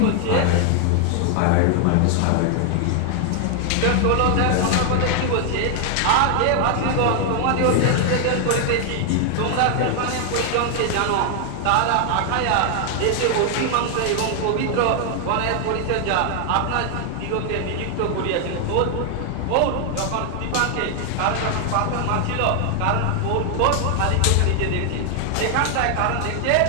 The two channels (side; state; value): both; different; correlation 0.00